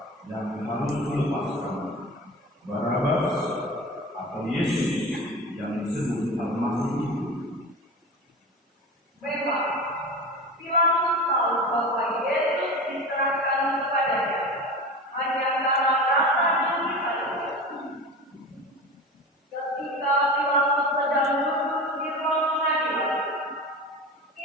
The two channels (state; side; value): normal; both; correlation 0.30